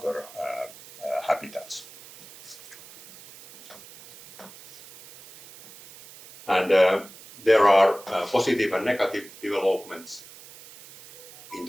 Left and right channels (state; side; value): noise; right; hiss, 19 dB below the sound